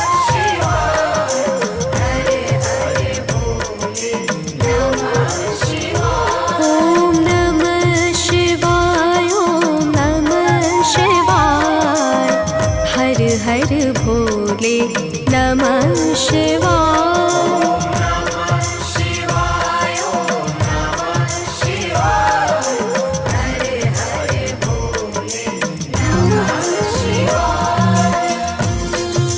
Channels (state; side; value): identical; both; correlation 1.00